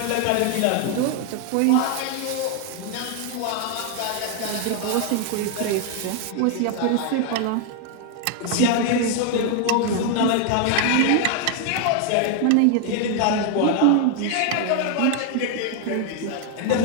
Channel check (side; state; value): both; different; correlation 0.00